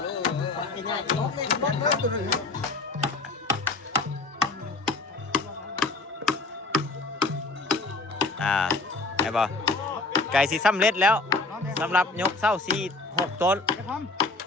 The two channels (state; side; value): quieter; right; 3.5 dB